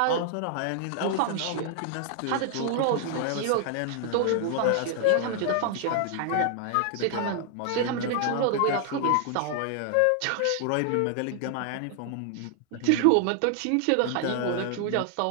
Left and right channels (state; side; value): different; both; correlation 0.00